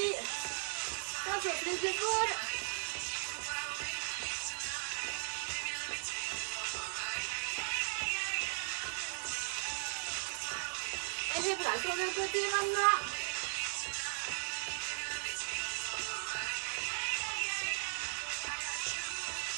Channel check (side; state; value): left; silent; digital silence